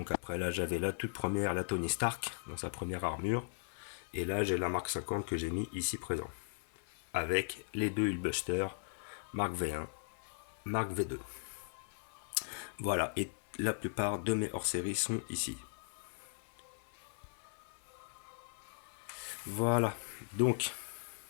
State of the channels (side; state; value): right; silent; 52 dB below the other